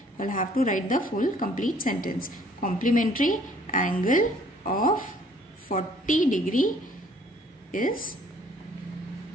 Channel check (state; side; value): normal; both; correlation 0.59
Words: You will have to write the full complete sentence. Complementary angle of 40 degree is